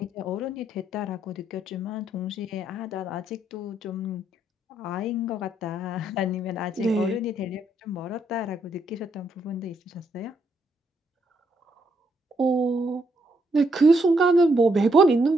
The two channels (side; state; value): both; normal; correlation 0.75